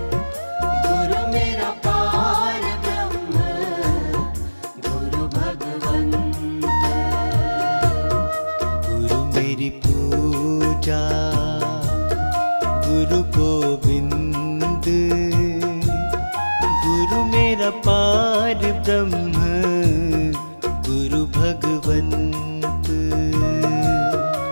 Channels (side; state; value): both; inverted; correlation -1.00